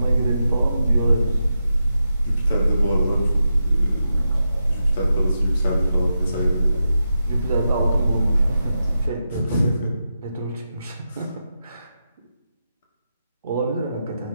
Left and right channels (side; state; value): both; inverted; correlation -0.88